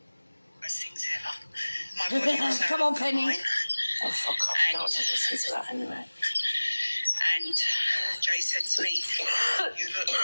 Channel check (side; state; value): both; inverted; correlation -1.00